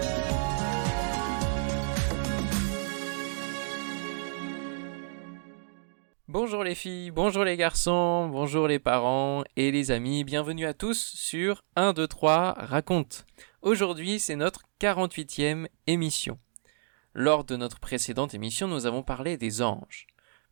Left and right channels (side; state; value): left; silent; digital silence